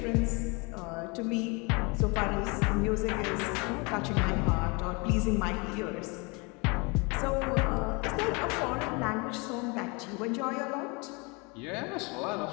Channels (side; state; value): right; quieter; 29.3 dB